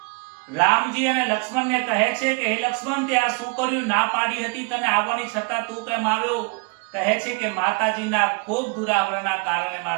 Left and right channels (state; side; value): quieter; left; 32.4 dB